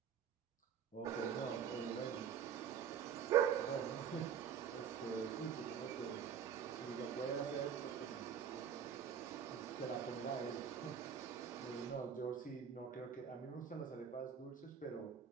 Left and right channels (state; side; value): quieter; left; 7.9 dB